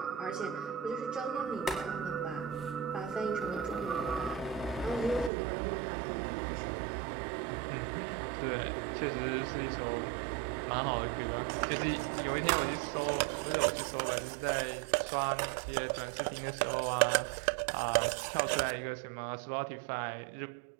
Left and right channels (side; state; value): left; drops out; at 5.3 s